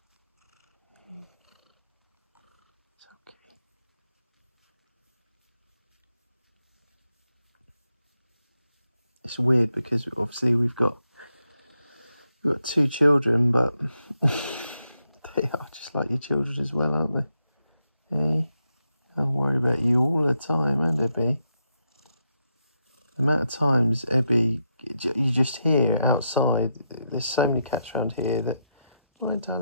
It's okay. It's weird because obviously we've got two children, but they are just like your children as well, aren't they? Hey, I worry about you all the time, and Ebby. The amount of times Ebby, you just hear outside. There's so many cats around here that, hi,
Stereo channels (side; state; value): both; inverted; correlation -0.84